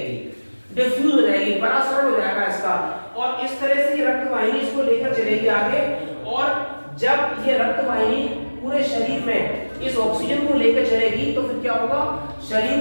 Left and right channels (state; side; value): inverted; both; correlation -1.00